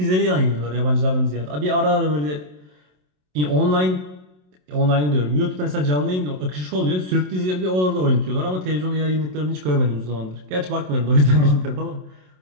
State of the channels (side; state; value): left; late; 27 ms